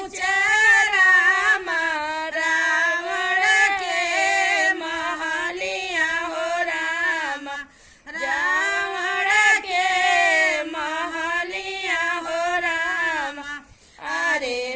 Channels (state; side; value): identical; both; correlation 1.00